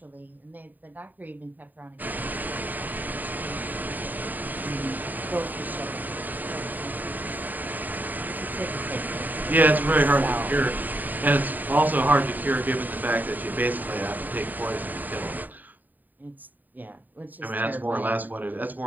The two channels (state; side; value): late; left; 0.087 ms